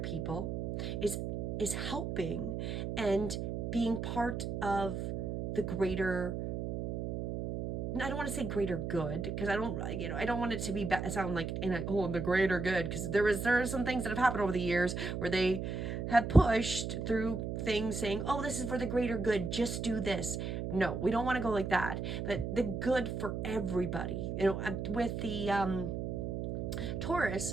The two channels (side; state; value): right; noise; hum, 3 dB below the sound